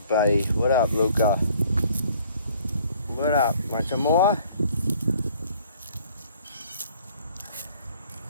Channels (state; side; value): inverted; both; correlation -0.58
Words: What up, Luca? What up? Want some more?